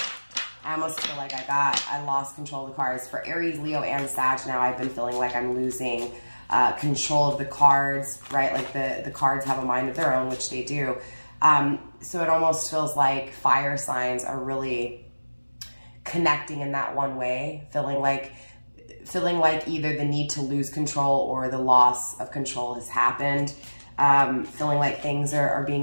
I almost feel like I lost control of the cards. For Aries, Leo, and Sag now, I've been feeling like I'm losing control of the cards, right? Like the cards have a mind of their own, which they do. So it almost feels like fire signs are really connecting in that one way, feeling like either the need to lose control or the loss of control has happened. Feeling like things are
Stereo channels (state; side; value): inverted; both; correlation -1.00